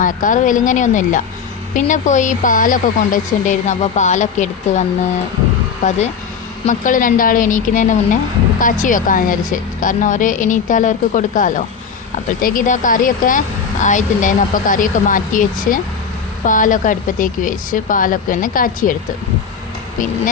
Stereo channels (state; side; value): quieter; right; 6.3 dB